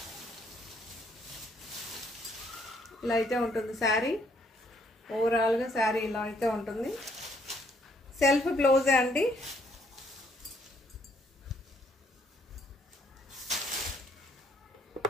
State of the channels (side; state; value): both; normal; correlation 0.68